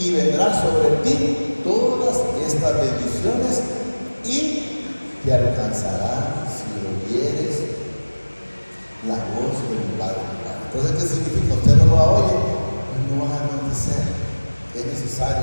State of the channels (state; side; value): inverted; both; correlation -1.00